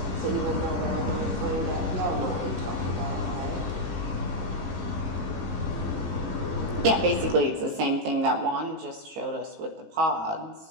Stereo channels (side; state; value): left; late; 19 ms